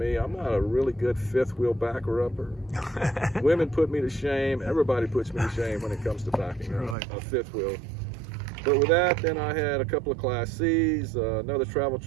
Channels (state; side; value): drops out; left; at 7.0 s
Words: I'm not a really good fifth wheel backer upper. Women put me to shame. Everybody puts me to shame when it comes to backing a fifth wheel. But with that, then I had a couple of Class C's, another travel